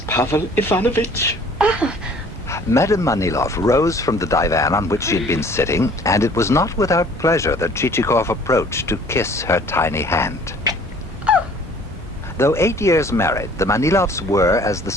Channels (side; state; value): both; normal; correlation 0.53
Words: Pavel Ivanovich. Madame Manilov rose from the divan on which she had been sitting, and it was not without pleasure that Chichikov approached to kiss her tiny hand. Though 8 years married, the Manilovs were, as the